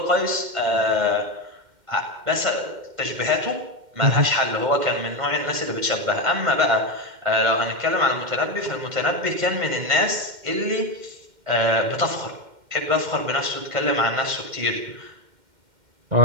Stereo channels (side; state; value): left; late; 2.1 ms